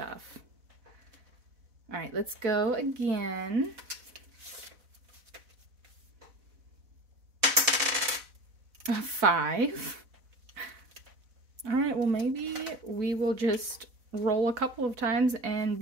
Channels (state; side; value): late; left; 4.0 ms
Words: All right, let's go again. A 5. All right, well, maybe we will just roll a couple of times and